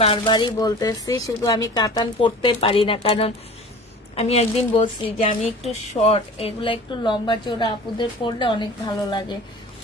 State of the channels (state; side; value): normal; both; correlation 0.40